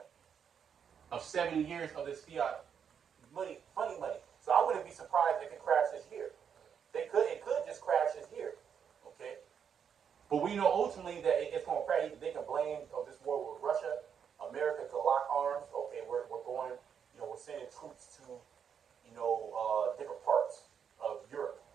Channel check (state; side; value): quieter; left; 7.5 dB